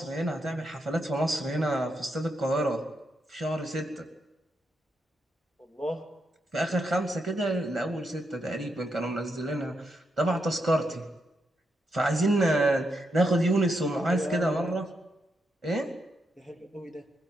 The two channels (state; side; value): normal; both; correlation 0.82